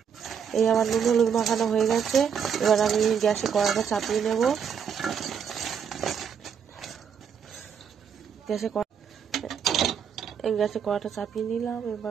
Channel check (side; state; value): left; quieter; 7.3 dB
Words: এই আমার নুন হলুদ মাখানো হয়ে গেছে, এবার আমি গ্যাসে কড়াটা চাপিয়ে নেব। গ্যাসে কড়াটা চাপিয়ে নিলাম,